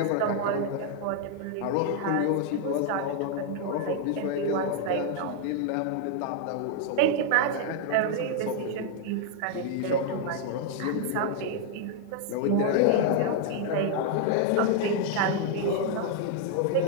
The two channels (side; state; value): both; different; correlation 0.00